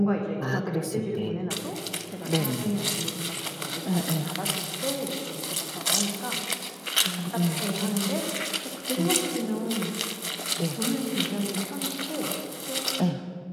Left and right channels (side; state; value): both; identical; correlation 1.00